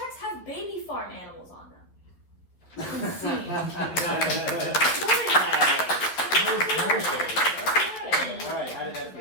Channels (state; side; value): late; right; 12 ms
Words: have baby farm animals on them. Very nice. All right, how did that